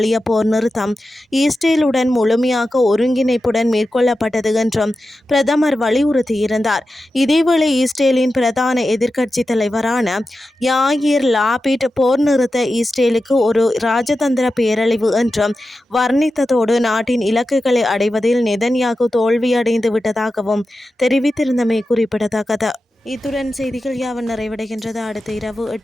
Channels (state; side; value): normal; both; correlation 0.92